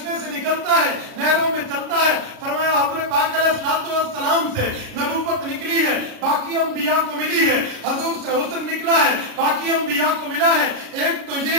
से निकलता है, नहरों में चलता है। फरमाया हुज़ूर पाक अलैहिस्सलाम से नबूवत निकली है, बाकी अंबिया को मिली है। हुजूर से हुस्न निकला है, बाकी अंबिया को मिला है। एक तो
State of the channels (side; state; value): left; late; 37 ms